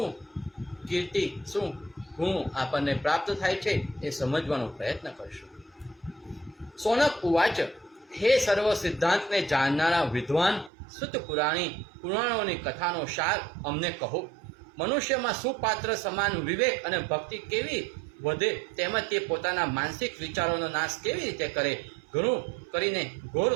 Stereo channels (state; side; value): drops out; left; at 10.7 s